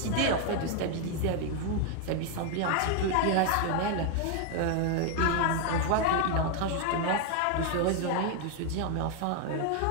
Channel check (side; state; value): both; different; correlation 0.00